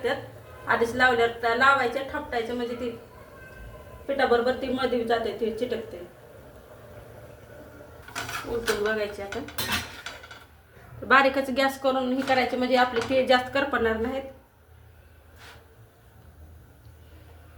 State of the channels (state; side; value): identical; both; correlation 1.00